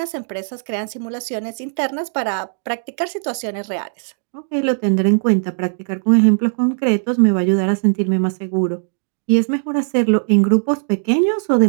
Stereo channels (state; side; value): silent; left; digital silence